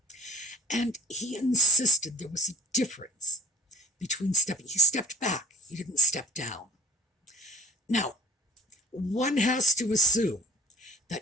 And he insisted there was a difference between stepping. He stepped back. He didn't step down. Now, one has to assume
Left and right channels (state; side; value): normal; both; correlation 0.47